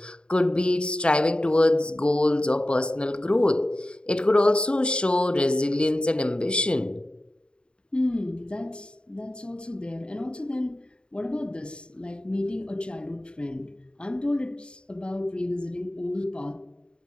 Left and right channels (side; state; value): right; late; 0.052 ms